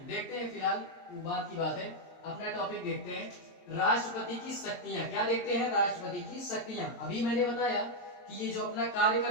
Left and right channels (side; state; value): right; late; 23 ms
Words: देखते हैं, फिलहाल वो बात की बात है, अपना टॉपिक देखते हैं, राष्ट्रपति की शक्तियां। क्या देखते हैं? राष्ट्रपति की शक्तियां। अभी मैंने बताया कि ये जो अपना कार्य